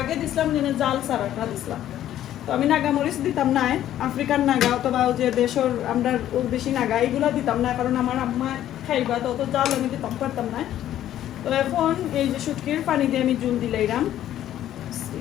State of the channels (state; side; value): quieter; right; 12.1 dB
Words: দিছিলাম যেন জাল সারাটা দিছিলাম তো আমি নাগামরিচ দিতাম না আফ্রিকান নাগা অথবা যে দেশের আমরা বেশি নাগা এগুলা দিতাম না কারণ আমার আম্মা খাইবা তো অত জাল আমি দিতাম পারতাম না তো এখন এই যে শুটকির পানি দিয়ে আমি জল দিলাইরাম